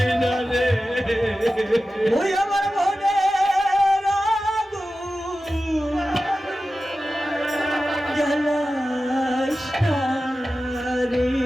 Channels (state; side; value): normal; both; correlation 0.94